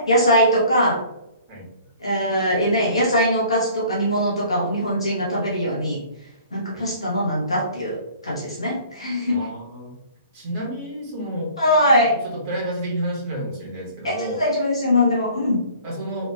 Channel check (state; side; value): inverted; both; correlation -0.51